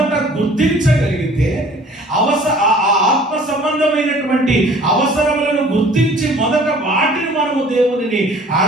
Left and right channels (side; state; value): both; normal; correlation 0.51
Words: గుర్తించగలిగితే, ఆత్మ సంబంధమైనటువంటి అవసరములను గుర్తించి మొదట వాటిని మనము దేవునిని